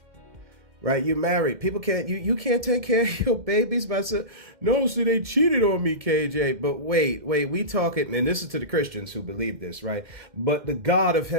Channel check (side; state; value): left; late; 2.1 ms